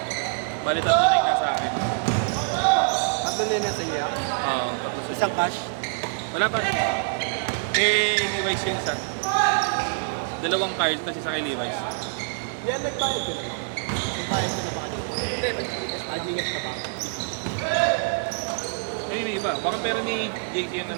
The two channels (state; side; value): silent; left; 55 dB below the other